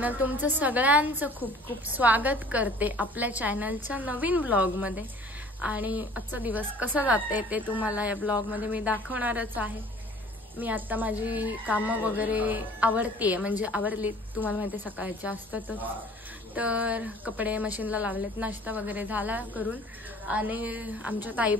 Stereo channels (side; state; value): both; normal; correlation 0.50